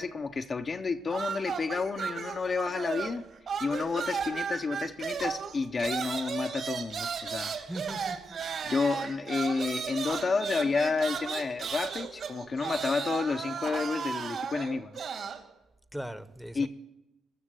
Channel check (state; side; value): normal; both; correlation 0.85